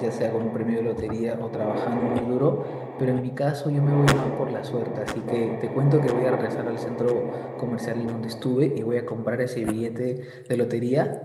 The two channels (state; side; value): identical; both; correlation 1.00